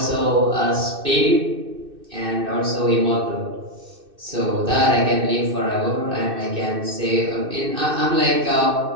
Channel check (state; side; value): late; left; 2.6 ms